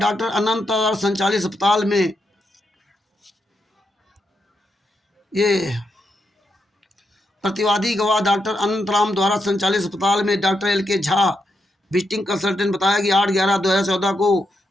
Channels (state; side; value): normal; both; correlation 0.83